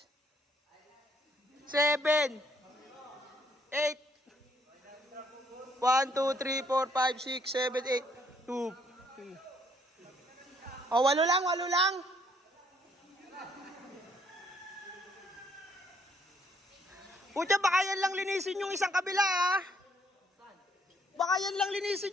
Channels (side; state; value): both; normal; correlation 0.66